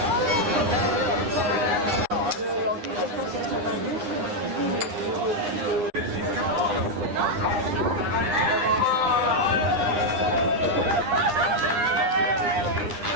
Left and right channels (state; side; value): late; left; 9.9 ms